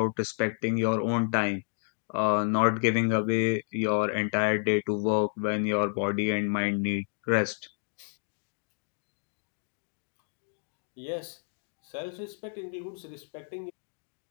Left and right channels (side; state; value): right; silent; 58 dB below the other